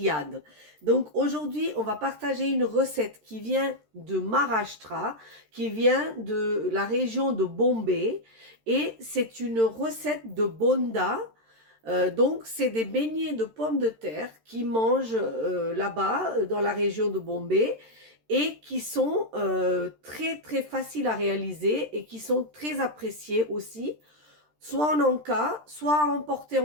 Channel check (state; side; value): late; left; 13 ms